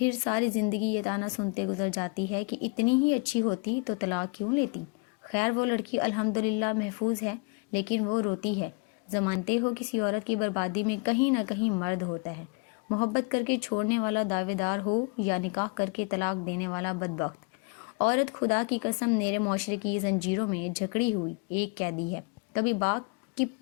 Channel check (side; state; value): right; quieter; 31.7 dB